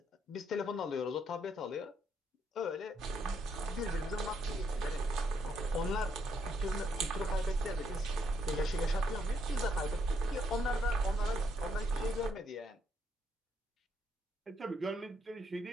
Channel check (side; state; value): both; normal; correlation 0.74